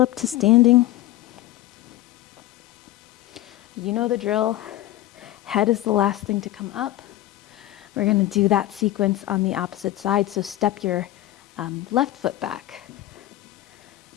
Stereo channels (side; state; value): right; quieter; 15.1 dB